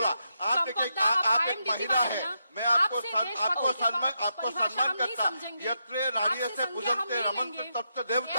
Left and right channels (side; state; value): both; inverted; correlation -0.83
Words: आप एक महिला है, मैं आपको सम्मान करता. यत्रे नार्य से पूजन्ते रमन्ते तत्त